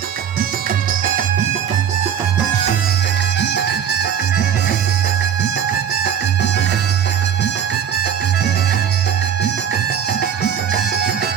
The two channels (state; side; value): quieter; left; 8.4 dB